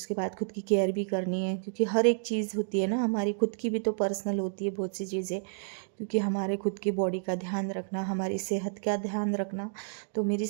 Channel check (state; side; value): silent; left; digital silence